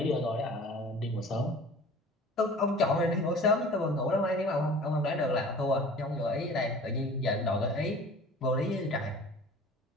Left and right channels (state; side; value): normal; both; correlation 0.44